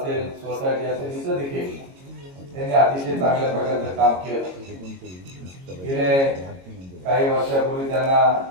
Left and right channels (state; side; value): late; left; 22 ms